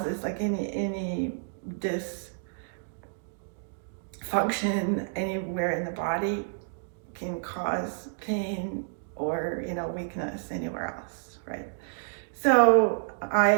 is. Like any dysfunction anywhere in the body can cause pain or weakness anywhere else, right? So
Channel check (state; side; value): silent; left; digital silence